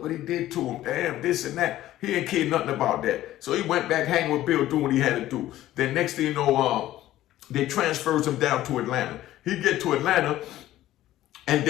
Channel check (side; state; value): right; quieter; 14.4 dB